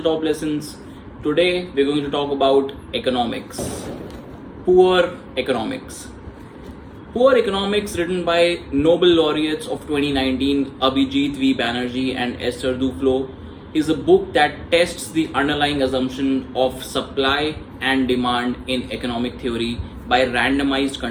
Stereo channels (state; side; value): identical; both; correlation 1.00